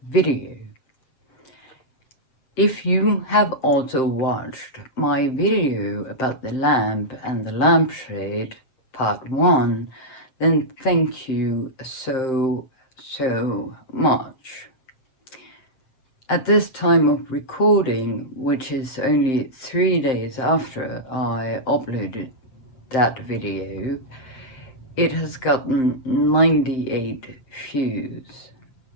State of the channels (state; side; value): late; right; 7.7 ms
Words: video. If you have also watched my video about the lamp and the lampshade, part 1, then thank you so much. At this time of recording, which is only 3 days after I uploaded that video, it has gotten 98 views.